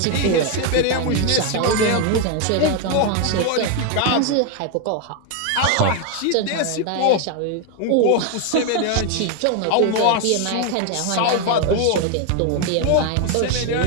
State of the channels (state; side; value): different; both; correlation 0.01